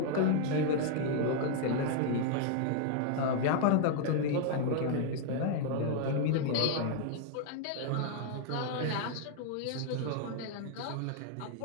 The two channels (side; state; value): both; different; correlation 0.00